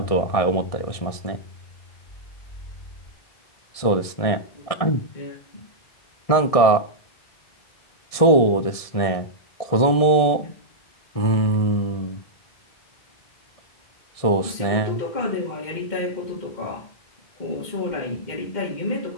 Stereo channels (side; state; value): right; late; 1.7 ms